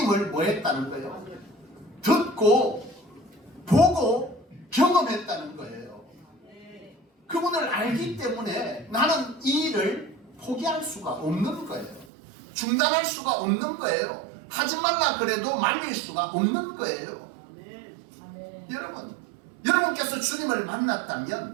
뭐 했다는 거예요? 듣고 보고 경험했다는 거예요. 그분을 알기 때문에 나는 이 일을 포기할 수가 없는 거예요. 중단할 수가 없는 거예요. 하지 말라 그래도 말릴 수가 없는 거예요. 여러분, 여러분께서 주님을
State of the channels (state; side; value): drops out; left; at 12.1 s